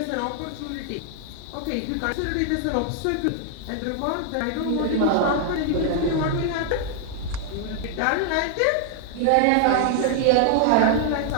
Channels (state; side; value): different; both; correlation 0.00